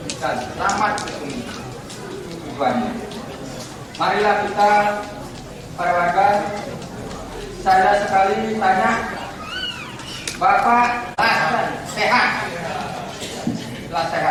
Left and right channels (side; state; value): both; identical; correlation 1.00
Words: dan selamat di tujuannya. Marilah kita para warga, saya sekali tanya, Bapak sehat, telah